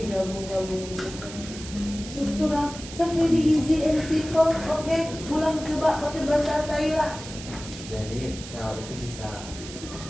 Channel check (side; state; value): right; noise; hiss, 13 dB below the sound